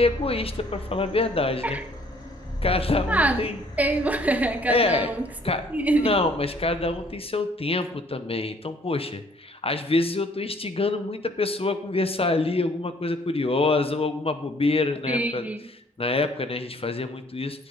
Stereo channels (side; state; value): both; normal; correlation 0.60